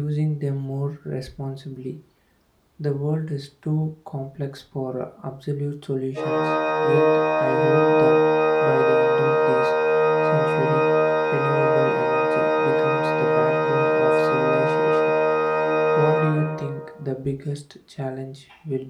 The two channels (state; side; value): identical; both; correlation 1.00